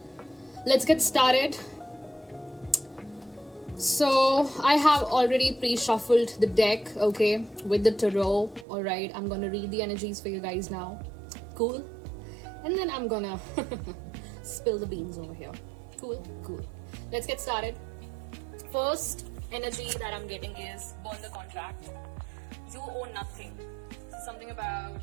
let's get started. So, I have already pre-shuffled the deck, okay, with the tarot. Alright, I'm gonna read the energies for you guys now. Cool? And then I'm gonna spill the beans over here. Cool. Let's get started. First energy that I'm getting is burn the contract. You owe nothing. Something about,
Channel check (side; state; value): left; drops out; at 8.7 s